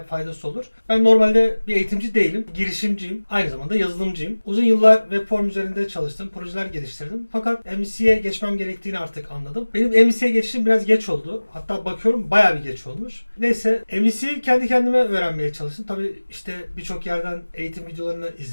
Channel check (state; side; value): inverted; both; correlation -1.00